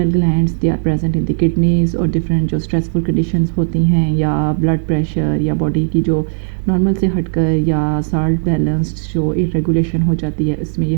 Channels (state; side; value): silent; left; digital silence